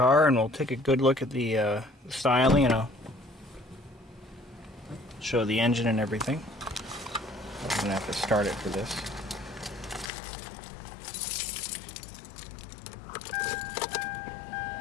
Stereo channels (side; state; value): right; drops out; at 10.1 s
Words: and we'll take a good look at the styling, and I'll show the engine and everything. I'm going to have to start it for this.